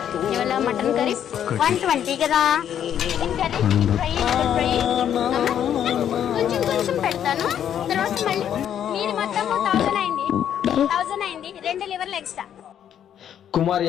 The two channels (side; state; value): right; quieter; 9.7 dB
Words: మటన్ కర్రీ 120 కదా. కొంచెం పెడతాను. తర్వాత మళ్ళీ మీరు మొత్తం 1000 అయింది. 2 లివర్లు ఎక్స్ట్రా. కుమారి